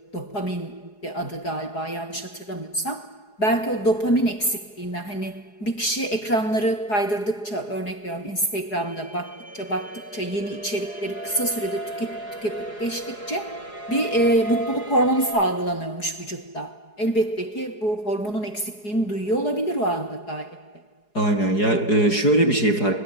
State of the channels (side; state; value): right; late; 4.8 ms